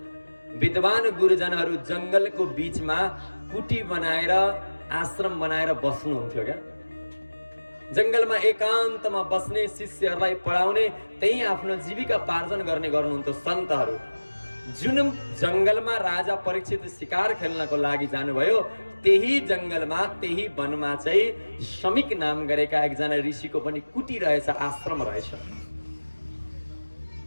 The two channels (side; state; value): both; inverted; correlation -1.00